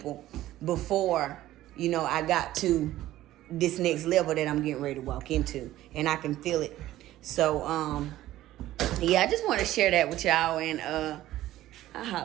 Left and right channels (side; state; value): left; quieter; 14.7 dB